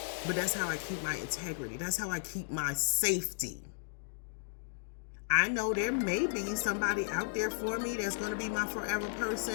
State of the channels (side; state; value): right; silent; digital silence